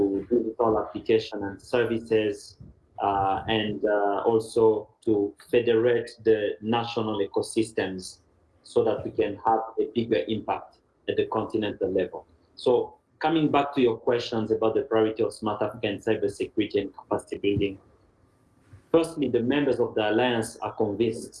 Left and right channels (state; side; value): identical; both; correlation 1.00